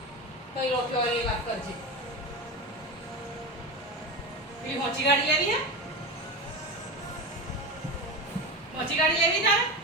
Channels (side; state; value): both; normal; correlation 0.22